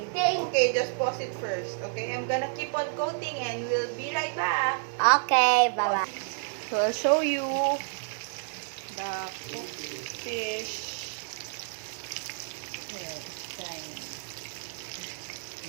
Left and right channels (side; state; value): left; silent; digital silence